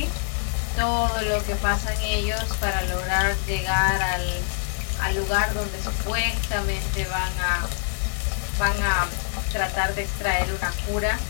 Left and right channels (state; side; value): silent; right; digital silence